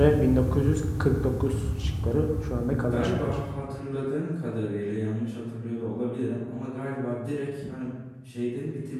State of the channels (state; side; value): identical; both; correlation 1.00